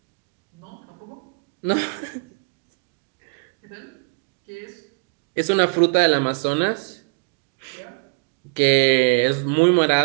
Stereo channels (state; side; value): quieter; left; 35.2 dB